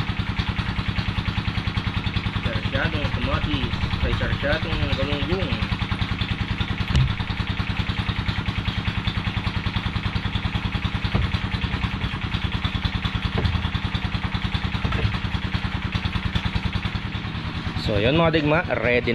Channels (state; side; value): identical; both; correlation 1.00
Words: Sarsyadong kamatis, ay sarsyadong galunggong. So yun mga digma, ready